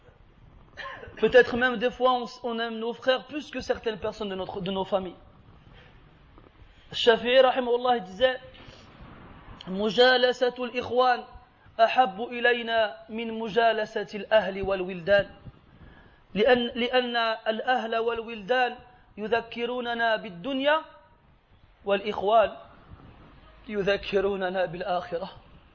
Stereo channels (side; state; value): both; identical; correlation 1.00